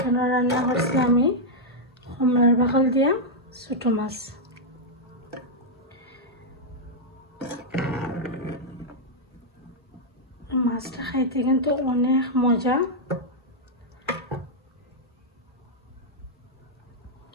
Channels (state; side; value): normal; both; correlation -0.04